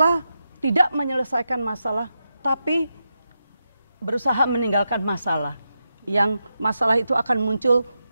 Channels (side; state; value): both; inverted; correlation -0.88